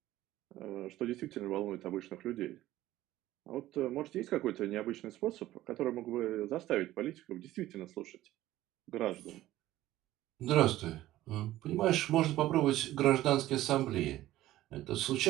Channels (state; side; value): quieter; left; 15.1 dB